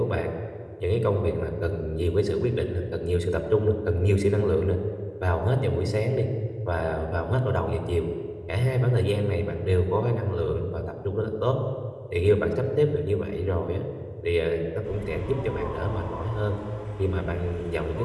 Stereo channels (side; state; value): both; identical; correlation 1.00